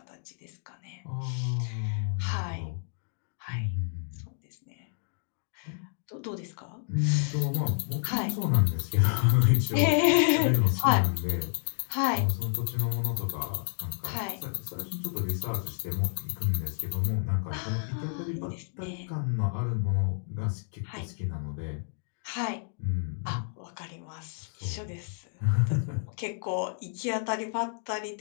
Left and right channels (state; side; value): silent; right; digital silence